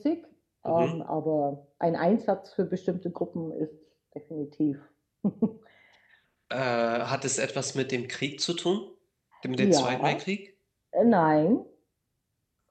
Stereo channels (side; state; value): both; identical; correlation 1.00